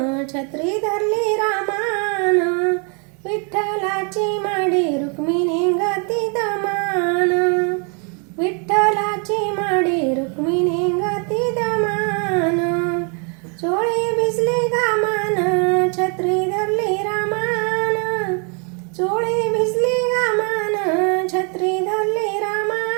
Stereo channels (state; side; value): quieter; left; 37.5 dB